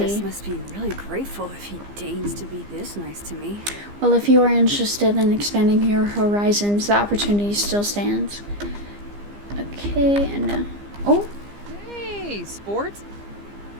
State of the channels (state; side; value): late; left; 15 ms